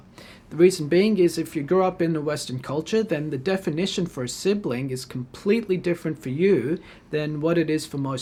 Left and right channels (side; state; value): both; identical; correlation 1.00